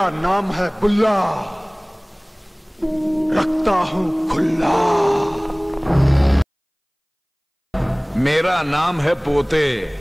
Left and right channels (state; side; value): identical; both; correlation 1.00